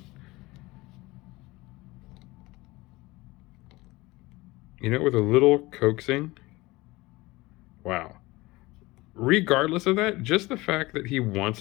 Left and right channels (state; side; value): quieter; right; 21.1 dB